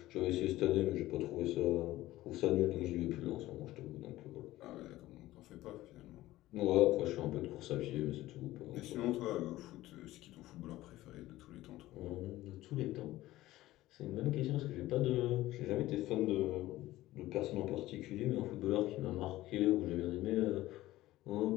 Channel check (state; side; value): quieter; right; 16.3 dB